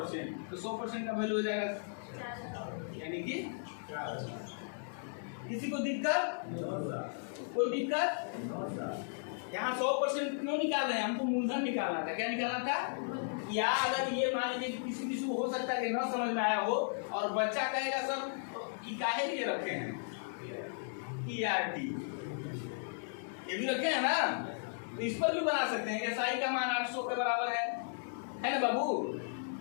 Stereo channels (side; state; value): right; silent; digital silence